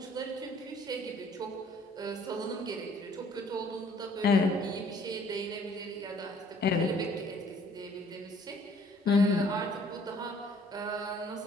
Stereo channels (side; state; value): both; normal; correlation 0.58